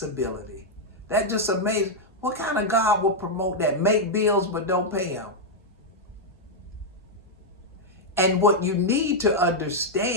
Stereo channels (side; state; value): both; normal; correlation -0.02